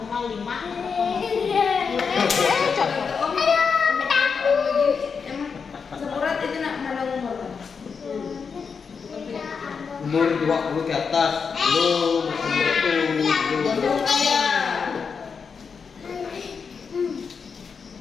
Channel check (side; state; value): right; quieter; 5.8 dB